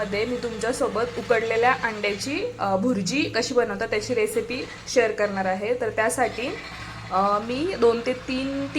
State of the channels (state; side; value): identical; both; correlation 1.00